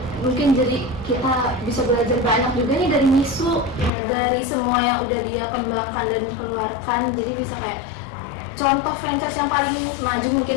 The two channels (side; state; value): right; drops out; at 3.9 s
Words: mungkin jadi kita bisa belajar banyak juga nih dari Misu, dari semua yang udah dia kembangkan dan keluarkan. Jadi bisa kayak contoh franchise yang paling maju mungkin